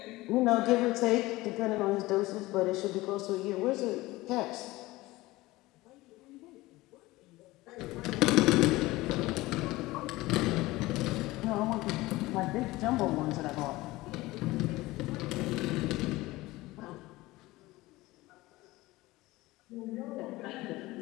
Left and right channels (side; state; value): right; quieter; 19.4 dB